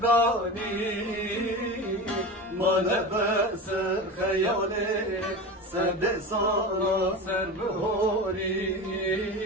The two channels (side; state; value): both; normal; correlation 0.27